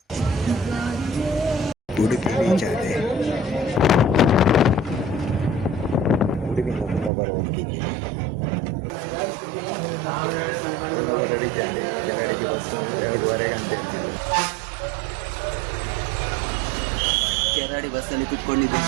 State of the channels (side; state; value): left; drops out; at 7.1 s